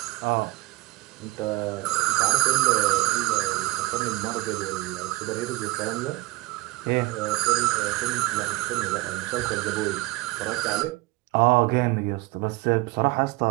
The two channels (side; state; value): left; quieter; 21.6 dB